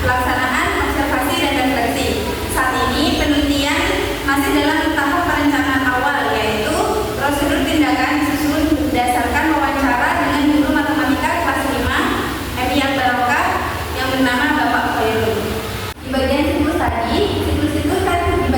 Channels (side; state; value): both; identical; correlation 1.00